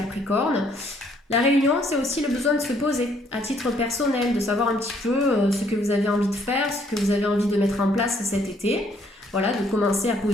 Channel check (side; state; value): both; normal; correlation 0.66